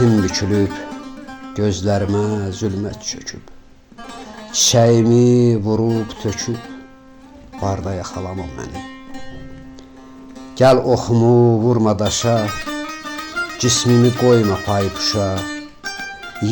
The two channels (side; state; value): both; identical; correlation 1.00